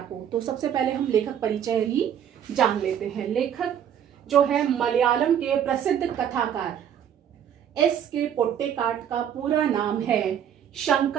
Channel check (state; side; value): quieter; left; 9.3 dB